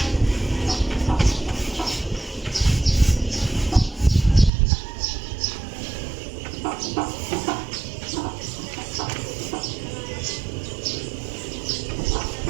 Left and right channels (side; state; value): left; drops out; at 4.5 s